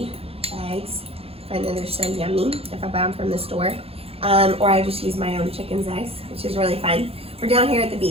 eggs. I know they're so yummy if I buy them from the store. Or I just use my own chicken's eggs, which is really fun. We're down here at the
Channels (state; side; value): late; left; 0.28 ms